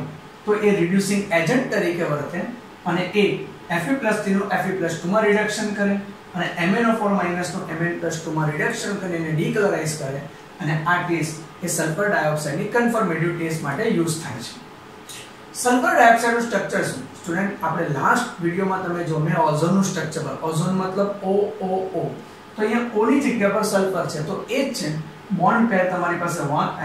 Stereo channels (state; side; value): identical; both; correlation 1.00